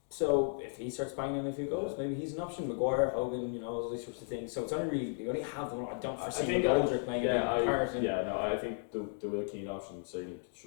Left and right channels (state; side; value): silent; right; digital silence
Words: So if he starts banging a few goals, maybe he's an option. Maguire, Hogan, all these sorts of things. So it's only really you only have them. I don't foresee McGoldrick playing a big part. I think the Will Keane option certainly